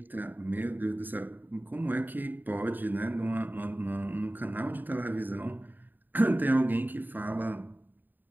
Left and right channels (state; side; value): late; left; 0.090 ms